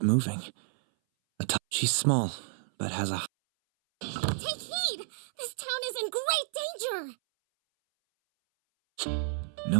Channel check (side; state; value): left; silent; 57 dB below the other